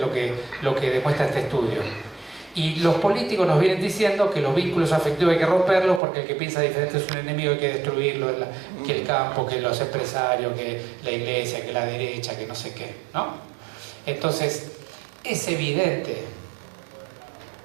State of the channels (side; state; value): left; drops out; at 6.0 s